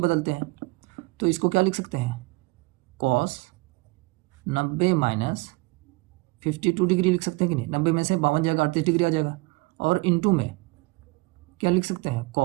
हैं। तो इसको क्या लिख सकते हैं, कॉस 90 माइनस 52 डिग्री लिख सकते हैं कि नहीं, 90 में से 52 जाएगा, 38 डिग्री आ जाएगा। और इंटू में क्या लिख सकते हैं,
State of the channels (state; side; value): quieter; left; 25.6 dB